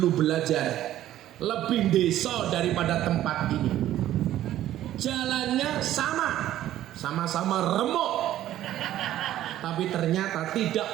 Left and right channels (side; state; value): left; quieter; 13.0 dB